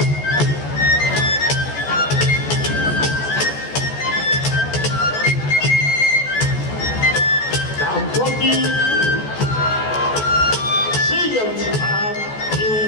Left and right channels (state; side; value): late; right; 14 ms